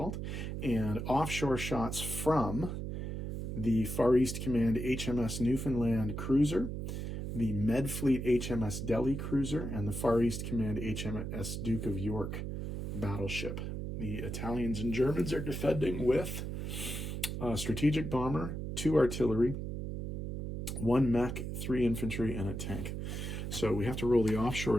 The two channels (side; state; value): right; noise; hum, 4 dB below the sound